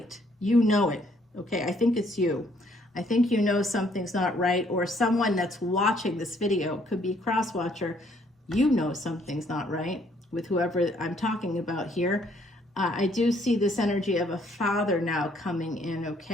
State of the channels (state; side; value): normal; both; correlation 0.66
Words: You know it, okay? I think it's you. I think you know something's not right, or someone that's watching this video, could be a cross-watcher, you know something's not right with whoever I'm talking about here. I do see this energy of a father now coming in,